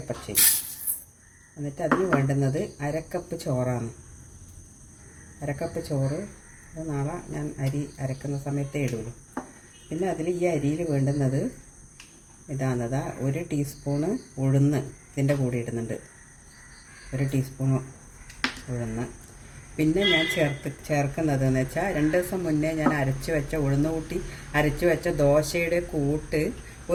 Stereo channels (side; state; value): both; identical; correlation 1.00